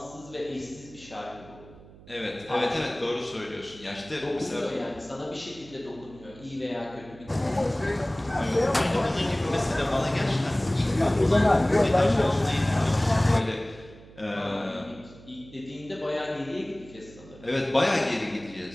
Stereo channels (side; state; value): right; noise; hum, 20 dB below the sound